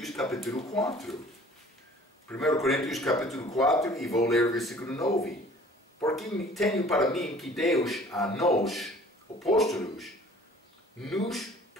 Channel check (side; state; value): both; normal; correlation 0.50